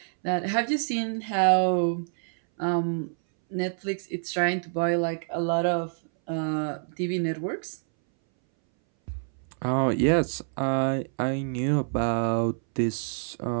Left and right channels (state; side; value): silent; left; 60 dB below the other